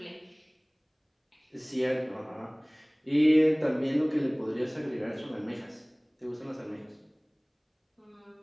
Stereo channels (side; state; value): both; identical; correlation 1.00